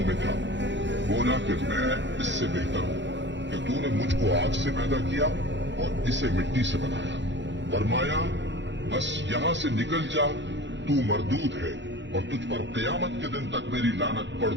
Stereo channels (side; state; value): left; late; 0.53 ms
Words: में था? बोला कि मैं इससे बेहतर हूँ कि तूने मुझको आग से पैदा किया और इसे मिट्टी से बनाया। फरमाया बस यहाँ से निकल जा, तू मरदूद है और तुझ पर क़यामत के दिन तक मेरी लानत